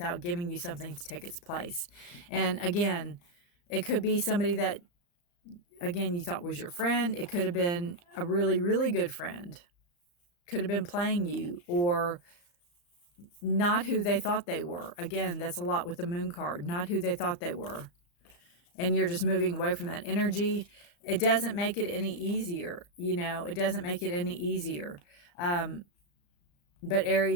giving you something to take its place. And again, it could be somebody that, again, you thought was your friend. It could have been a really, really good friend. Could have been playing you, or not who they thought they were. Again, that's a lot with the moon card. Not who they thought they were. And you're just moving away from that energy. It doesn't make it any easier. You know, it doesn't make it any easier. But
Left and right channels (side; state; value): right; late; 34 ms